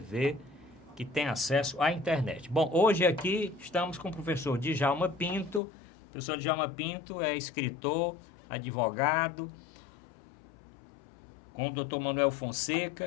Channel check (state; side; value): drops out; right; at 5.6 s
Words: que tem acesso à internet. Bom, hoje aqui estamos com o professor Djalma Pinto. O professor Djalma Pinto é escritor, advogado, com o Dr. Manuel